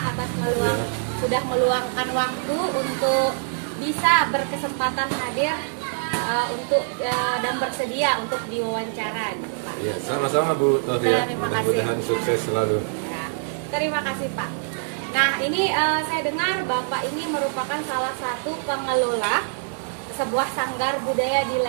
atas sudah meluangkan waktu untuk bisa berkesempatan hadir dan bersedia untuk diwawancara gitu, Pak. Iya, sama-sama Bu Tohriah. Terima kasih. Mudah-mudahan sukses selalu. Ya, terima kasih Pak. Nah, ini saya dengar Bapak ini merupakan salah satu pengelola sebuah sanggar budaya di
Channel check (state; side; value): silent; left; digital silence